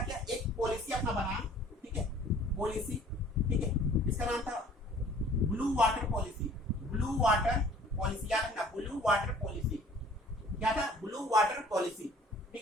किया? एक पॉलिसी अपना बनाया, ठीक है, पॉलिसी, ठीक है। इसका नाम था ब्लू वाटर पॉलिसी। याद रखना, ब्लू वाटर पॉलिसी। क्या था? ब्लू वाटर पॉलिसी,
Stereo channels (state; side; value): normal; both; correlation 0.52